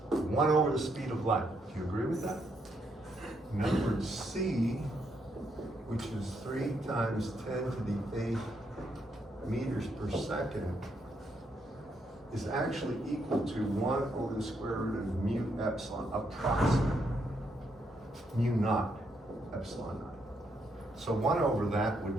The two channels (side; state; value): both; normal; correlation 0.76